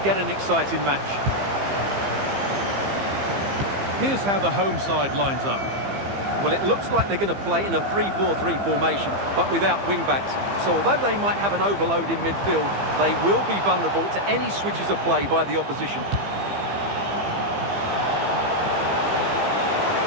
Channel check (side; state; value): left; late; 15 ms